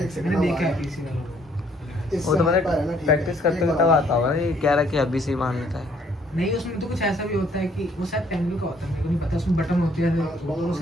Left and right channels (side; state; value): both; normal; correlation 0.64